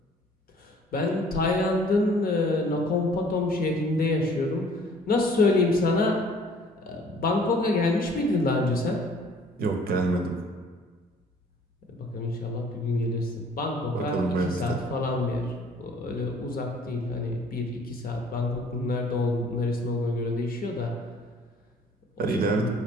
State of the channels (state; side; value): normal; both; correlation 0.55